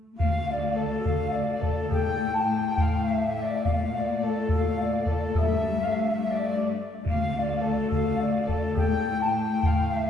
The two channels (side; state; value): both; normal; correlation 0.73